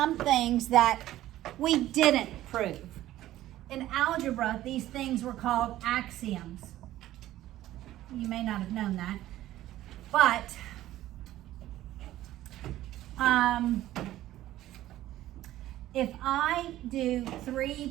things that we didn't prove. In algebra, these things were called axioms. You may not have known that, but if I do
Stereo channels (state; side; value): quieter; left; 14.4 dB